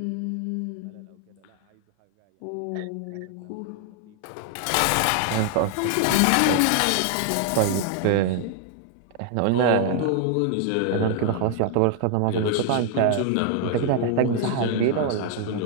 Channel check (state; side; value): different; both; correlation 0.00